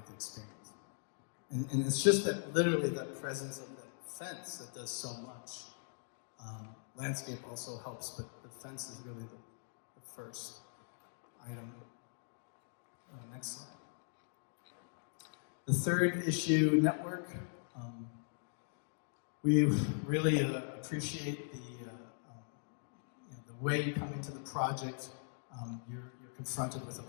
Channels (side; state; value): right; silent; digital silence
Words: the experience. And it's just that, literally, that presence of that fence that does so much. Landscape also helps, but the fence is really the first item. Next slide. The third issue, network. We really appreciate the way you come into the project. You're confronted with a